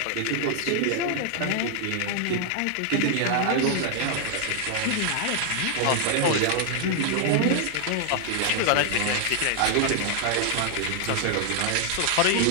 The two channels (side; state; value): both; different; correlation 0.00